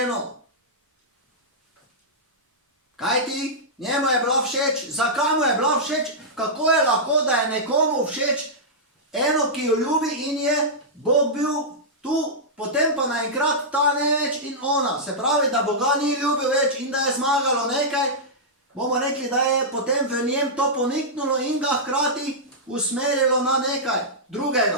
Kaj ti? Njemu je bila všeč. Zakaj mu je bila všeč? Kako je lahko, da je nekomu všeč eno, ki jo ljubi in je Bog bil tu, potem pa naenkrat ta ne več in ona. Se pravi, da Boga ni ljubil več in da je zmagalo nekaj. Bomo rekli, da je potem v njem to poniknulo in ga hkrati usmerilo na nekaj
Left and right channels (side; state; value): both; normal; correlation -0.11